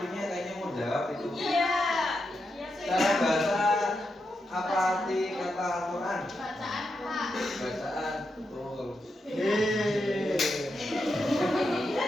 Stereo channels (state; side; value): normal; both; correlation 0.85